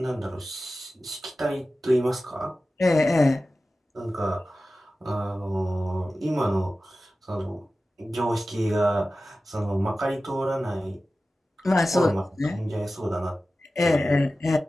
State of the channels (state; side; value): normal; both; correlation 0.95